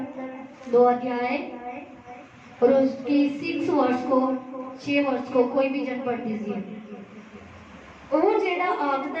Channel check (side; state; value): both; identical; correlation 1.00